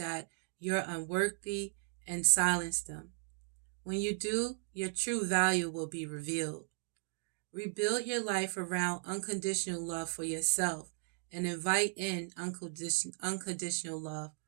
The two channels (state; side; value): silent; left; 54 dB below the other